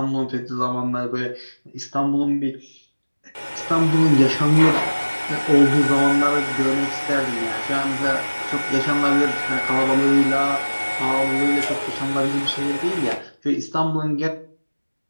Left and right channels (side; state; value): both; inverted; correlation -1.00